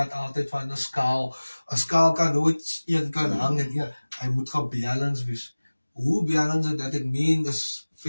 altijd van een skaal. Een skaal kan nooit één kan hangen. Ja, hij moet gebalance wees. Hoe balance dat ik meen is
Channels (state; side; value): inverted; both; correlation -1.00